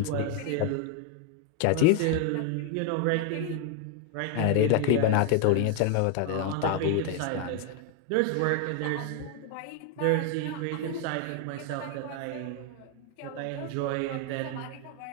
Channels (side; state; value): both; different; correlation 0.01